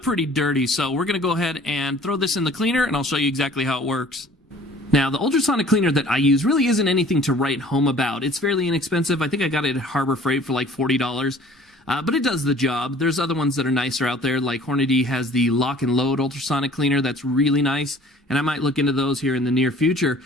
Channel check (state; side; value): normal; both; correlation 0.51